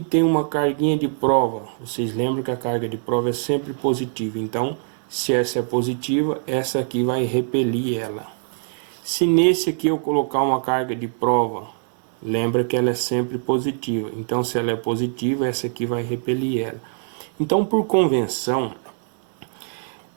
uma carguinha de prova. Vocês lembram que a carga de prova é sempre positiva. Então, se essa é positiva, essa aqui vai repelir ela. Se nesse aqui eu colocar uma carga de prova, lembra que ela é sempre positiva. Então, se ela é positiva, essa aqui vai repelir ela. Então, por convenção,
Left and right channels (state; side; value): silent; left; digital silence